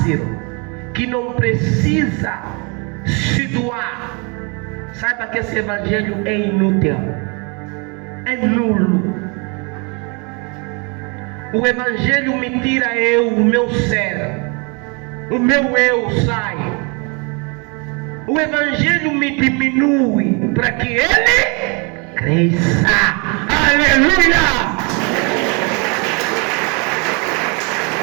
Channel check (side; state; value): left; quieter; 32.4 dB